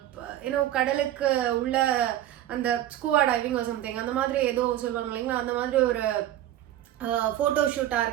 கடலுக்கு உள்ள அந்த ஸ்கூவா டைவிங் சம்திங் அந்த மாதிரி ஏதோ சொல்லுவாங்க இல்லைங்களா, அந்த மாதிரி ஒரு ஃபோட்டோ ஷூட்டாக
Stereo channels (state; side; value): quieter; left; 12.8 dB